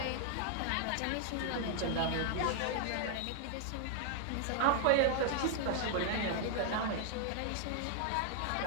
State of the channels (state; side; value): different; both; correlation 0.00